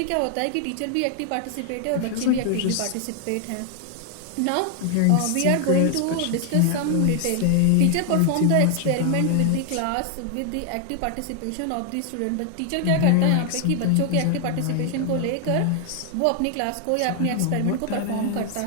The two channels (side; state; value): both; different; correlation 0.00